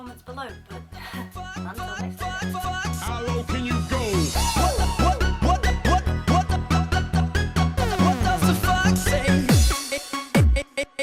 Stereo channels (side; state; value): both; identical; correlation 1.00